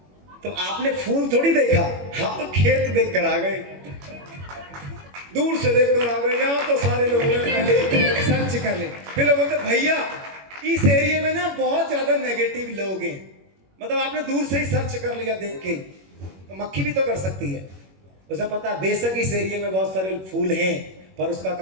तो आपने फूल थोड़ी देखा, हम तो खेत देख कर आ गए, दूर से देख कर आ गए। यहाँ तो सारे लोग पहले सर्च कर ले, फिर लोग बोलते भैया इस एरिया में ना बहुत ज्यादा नेगेटिव लोग हैं, मतलब आपने दूर से ही सर्च कर लिया देख के, तो मक्खी भी तो कर सकती है। उसे पता है बेशक इस एरिया में बहुत सारे फूल हैं, पर उसका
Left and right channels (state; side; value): late; left; 21 ms